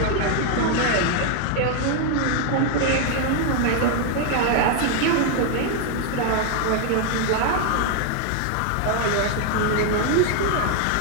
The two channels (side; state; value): both; different; correlation 0.00